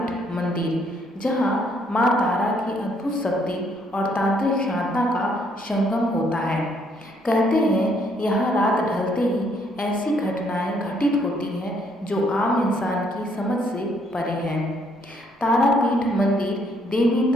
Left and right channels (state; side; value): normal; both; correlation 0.69